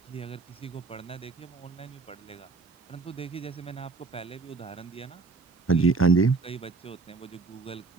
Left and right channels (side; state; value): left; quieter; 4.3 dB